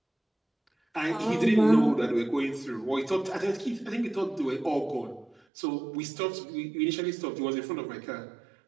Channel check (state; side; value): drops out; left; at 5.4 s